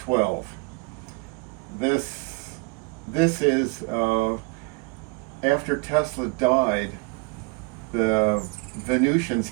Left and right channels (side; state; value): left; quieter; 29.2 dB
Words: This is after Tesla died, the Venusians